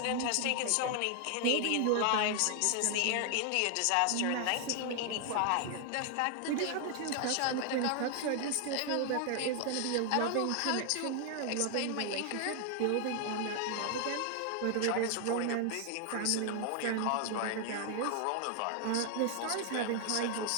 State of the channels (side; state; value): both; different; correlation 0.00